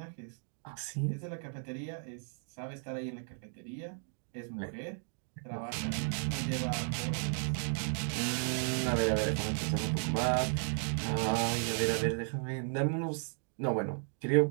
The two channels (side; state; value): left; silent; 55 dB below the other